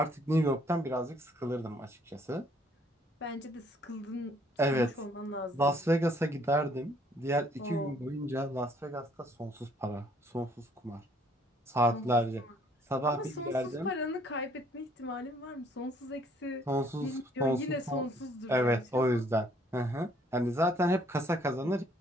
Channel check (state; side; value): normal; both; correlation 0.63